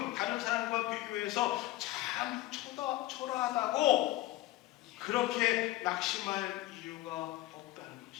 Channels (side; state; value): right; quieter; 16.7 dB